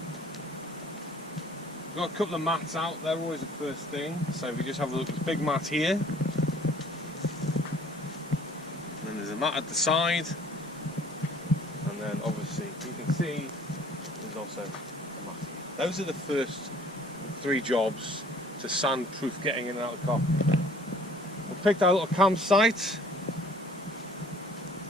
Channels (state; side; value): normal; both; correlation 0.54